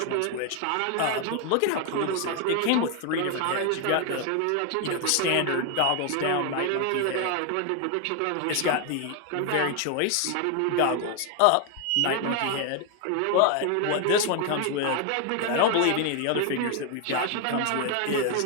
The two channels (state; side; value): different; both; correlation 0.01